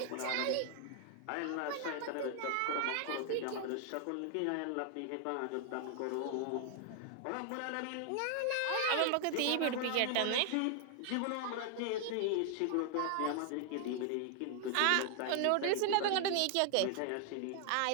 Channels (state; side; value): different; both; correlation 0.00